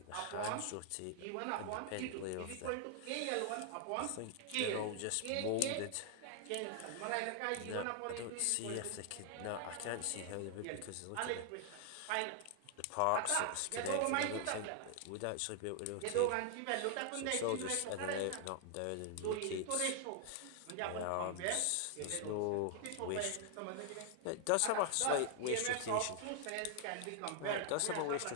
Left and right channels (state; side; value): different; both; correlation 0.00